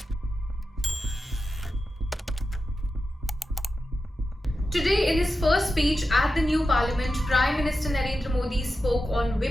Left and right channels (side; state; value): both; normal; correlation 0.91